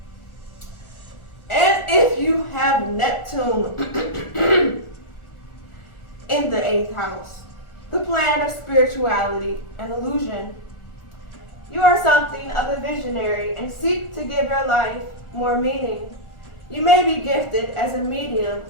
And if you have Neptune in the 8th house, the planet of spirituality and illusion, you are something of a visionary and seek to give your life more meaning. You may be gifted as a medium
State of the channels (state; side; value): late; right; 1.4 ms